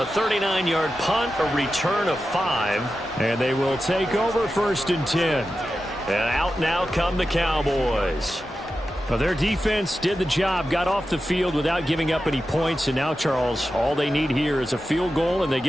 39-yard punt, a return of 5. And they will take over 1st and 10. And out now come the Cowboys. Well, their defense did the job, got off the field without giving up any points, and now, Charles, all they need here is a field goal, and they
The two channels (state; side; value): normal; both; correlation 0.92